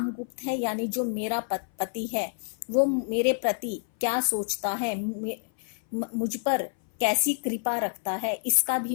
है, यानी जो मेरा पति है, वो मेरे प्रति क्या सोचता है, मुझ पर कैसी कृपा रखता है, इसका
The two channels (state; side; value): silent; right; 58 dB below the other